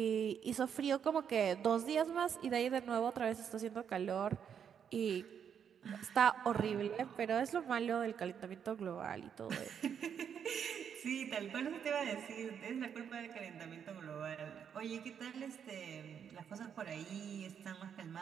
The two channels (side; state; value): left; quieter; 7.9 dB